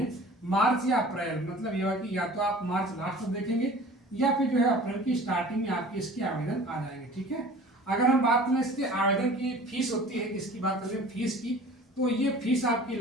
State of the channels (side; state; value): both; normal; correlation 0.44